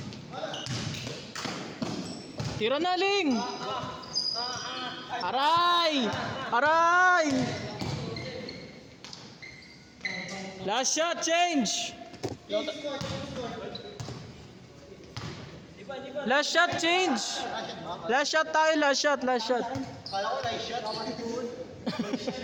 Tira na, Ling! Aray! Aray! Last shot, change! Last shot, change! Last shot tayo, last shot, last shot. Kala ko na shot.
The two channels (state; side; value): identical; both; correlation 1.00